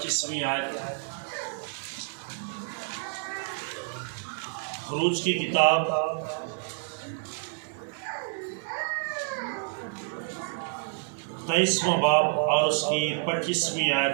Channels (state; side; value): silent; left; digital silence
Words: آیت۔ خروج کی کتاب تیئیسواں باب اور اس کی 25ویں